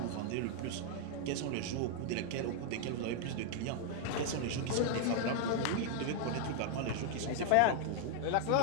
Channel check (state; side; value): different; both; correlation 0.00